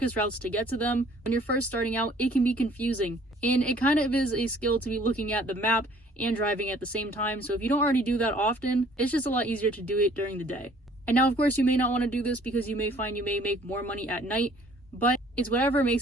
routes to get to them. When you're first starting out, it can be confusing. And it kind of is a skill to be looking at the map and driving at the same time. So if you don't already do that often, it's just a lot easier to do it during the day. And now, of course, you may not want to do this because you may find you may make more money at night, but it's whatever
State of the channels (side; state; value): both; normal; correlation 0.56